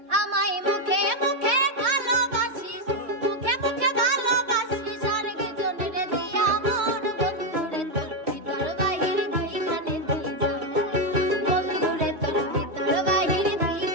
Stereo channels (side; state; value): left; late; 3.2 ms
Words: আমায় মুখে মুখে ভালোবাসিস, মুখে মুখে ভালোবাসিস, আর কি জন্য রে দিয়া মন বন্ধুরে তোর ভিতর বাহির দুইখানে দুইজন, বন্ধুরে তোর ভিতর বাহির